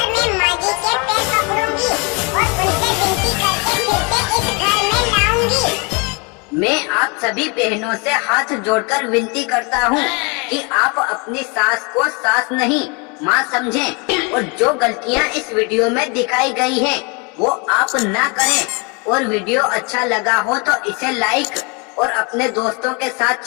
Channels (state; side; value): quieter; right; 31.4 dB